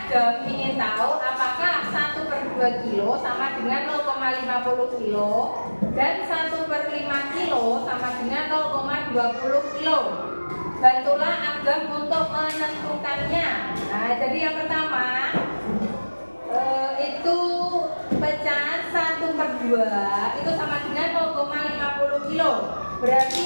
ingin tahu apakah 1/2 kilo sama dengan 0,50 kilo dan 1/5 kilo sama dengan 0,20 kilo. Bantulah Agam untuk menentukannya. Nah, jadi yang pertama itu pecahan 1/2 itu sama dengan 0,50 kilo. Berarti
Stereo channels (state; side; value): inverted; both; correlation -1.00